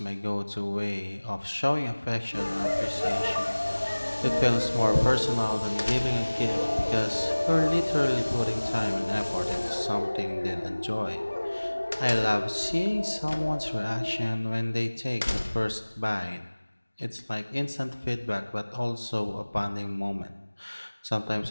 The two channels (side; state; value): both; inverted; correlation -1.00